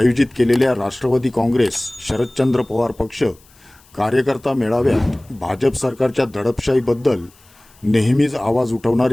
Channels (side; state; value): left; noise; hiss, 29 dB below the sound